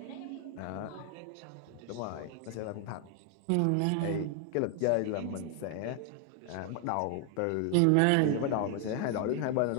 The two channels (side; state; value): both; different; correlation 0.00